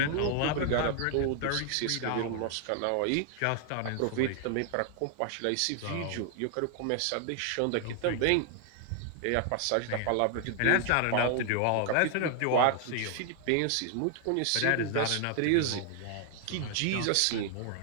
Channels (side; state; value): both; different; correlation 0.00